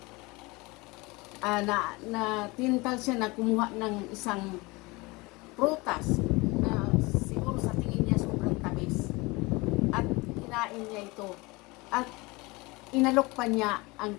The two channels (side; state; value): right; quieter; 24.2 dB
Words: na tintal siya na kumuha ng isang prutas na siguro sa tingin niya sobrang tamis at kinain niya ito at inalok pa niya ang